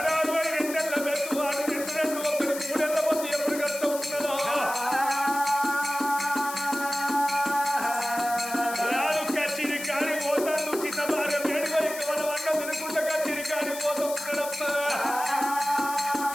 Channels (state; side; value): noise; left; hiss, 10 dB below the sound